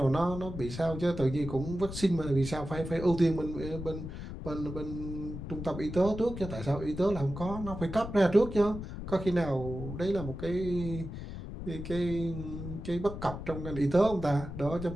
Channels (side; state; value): left; noise; rumble, 8 dB below the sound